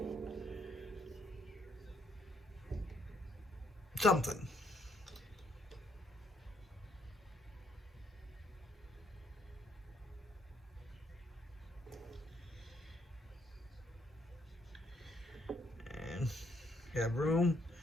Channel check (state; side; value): normal; both; correlation 0.71